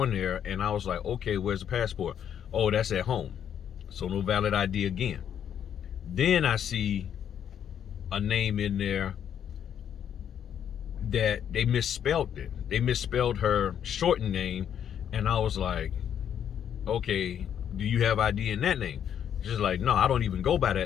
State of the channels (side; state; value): right; quieter; 9.1 dB